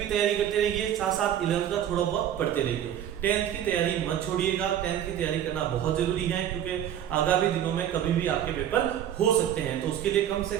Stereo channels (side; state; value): left; quieter; 10.5 dB